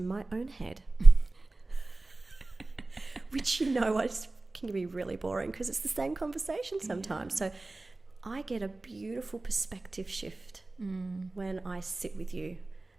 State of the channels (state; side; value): quieter; left; 3.1 dB